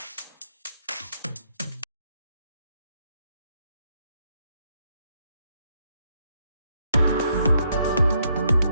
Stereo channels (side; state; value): both; inverted; correlation -0.75